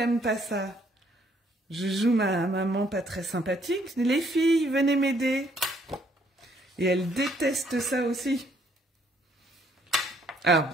pas ça, je joue ma maman pas très sympathique. Les filles, venez m'aider. Et elle déteste ça aussi. Alors,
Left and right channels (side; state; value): both; normal; correlation 0.67